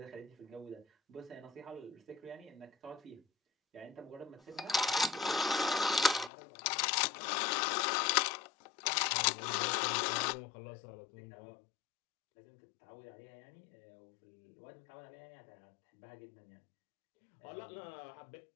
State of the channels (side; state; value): right; drops out; at 6.3 s